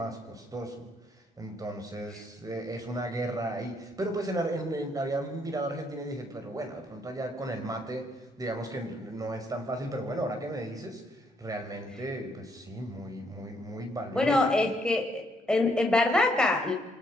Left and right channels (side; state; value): both; normal; correlation 0.71